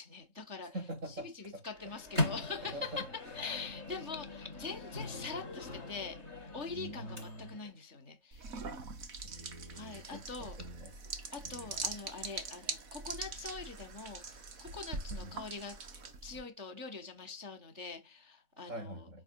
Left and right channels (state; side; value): late; left; 4.1 ms